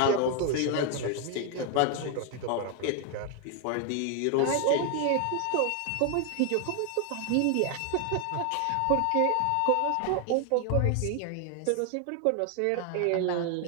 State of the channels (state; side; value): different; both; correlation 0.00